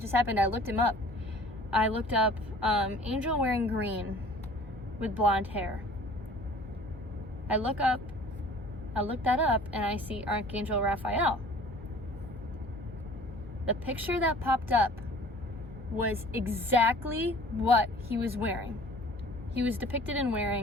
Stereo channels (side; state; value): both; normal; correlation 0.48